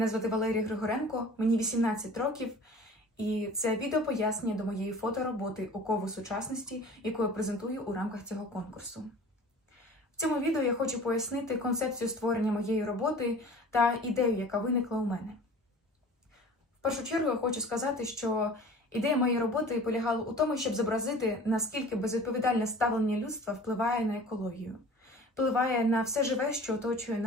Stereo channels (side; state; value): both; normal; correlation 0.43